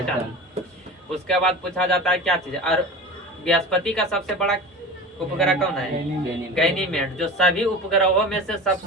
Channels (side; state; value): both; normal; correlation 0.33